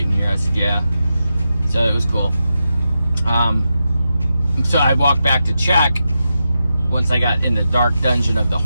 in here. I said, yeah. So it was cool. So I walked back to check once I got in the dark dungeon of the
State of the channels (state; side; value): inverted; both; correlation -0.88